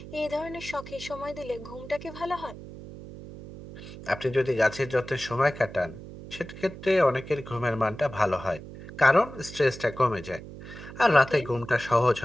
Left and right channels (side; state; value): right; noise; hum, 14 dB below the sound